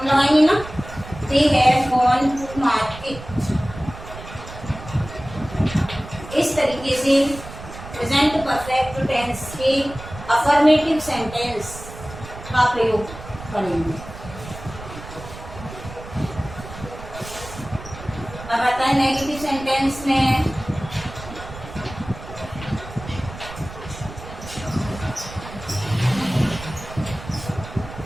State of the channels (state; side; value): noise; right; rumble, 13 dB below the sound